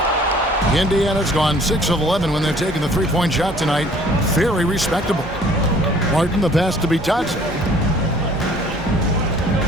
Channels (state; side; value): normal; both; correlation 0.55